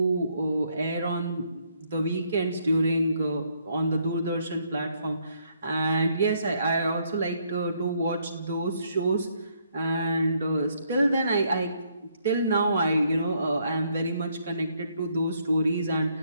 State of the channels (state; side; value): inverted; both; correlation -0.71